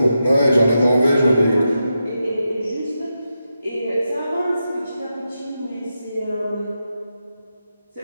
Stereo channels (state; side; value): inverted; both; correlation -0.88